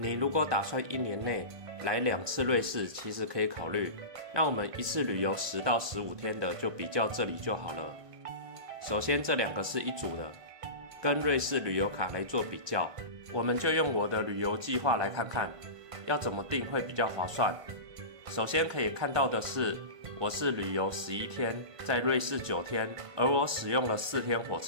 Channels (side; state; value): left; late; 1.5 ms